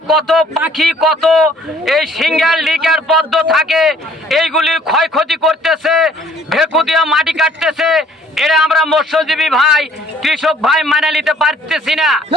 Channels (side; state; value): both; normal; correlation 0.58